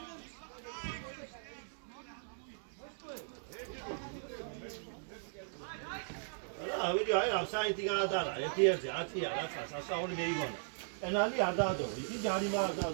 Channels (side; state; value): left; silent; digital silence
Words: ვიდეო აი ამ საიტი გადაადა, ერთ-ერთი 10-ია რაცა სასწაული მეიგონა. კანალი არ დაადო, იგი ჯარიმა არ